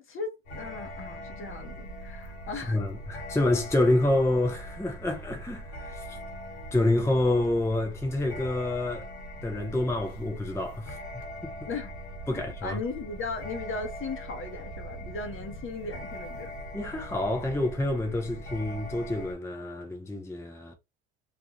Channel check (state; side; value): normal; both; correlation 0.80